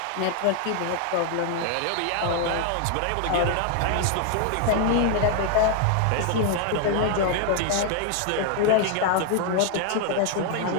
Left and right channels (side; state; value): both; different; correlation 0.00